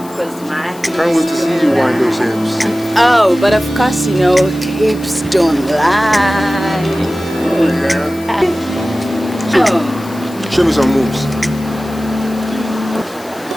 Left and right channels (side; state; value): left; noise; hiss, 21 dB below the sound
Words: course, my. Can't wait to see you wind those hips. Oh, but of course, you know, hips don't lie. Oh, yeah. Show me some moves.